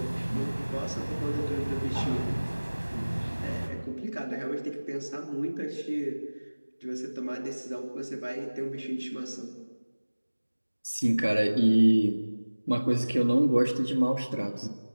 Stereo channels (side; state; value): both; inverted; correlation -1.00